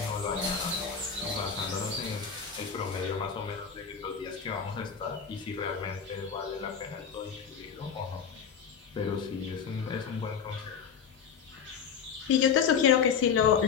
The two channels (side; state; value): right; quieter; 6.9 dB